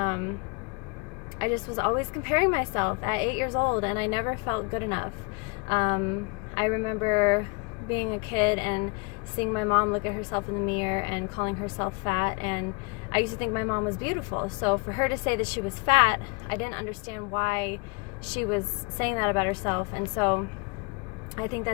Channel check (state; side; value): quieter; right; 29.2 dB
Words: just was always comparing myself at 8 years old, and I never felt good enough. I remember being a kid and seeing my mom look at herself in the mirror and calling herself fat, and I used to think my mom was beautiful. So for her to say that she was fat, I didn't understand why she was saying that about herself. And so I think